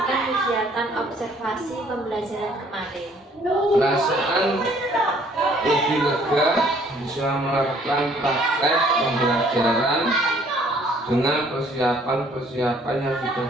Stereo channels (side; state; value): both; normal; correlation 0.60